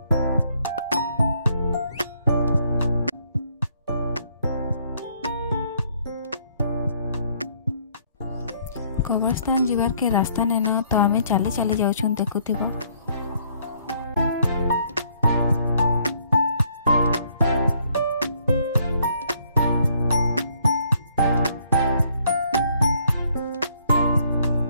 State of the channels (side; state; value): both; inverted; correlation -0.67